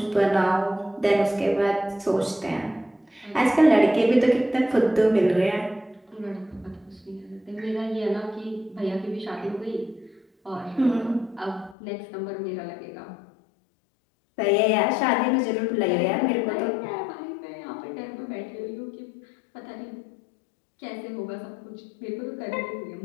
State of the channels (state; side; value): drops out; right; at 11.8 s